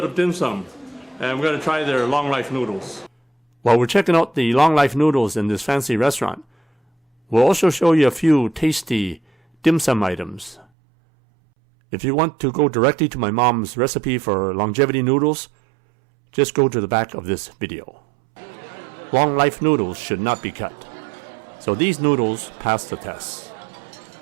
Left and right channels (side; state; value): left; drops out; at 10.7 s